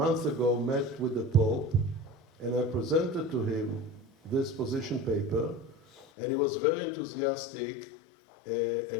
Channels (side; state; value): right; drops out; at 6.1 s